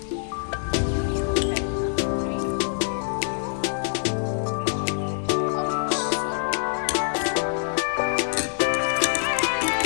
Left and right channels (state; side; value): silent; right; digital silence